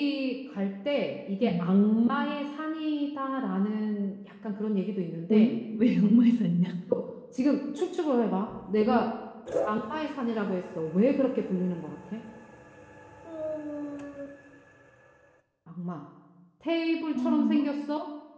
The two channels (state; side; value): identical; both; correlation 1.00